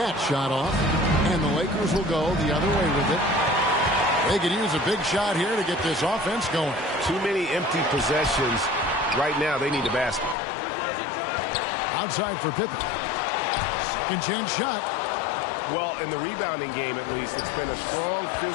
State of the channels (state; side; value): drops out; right; at 10.4 s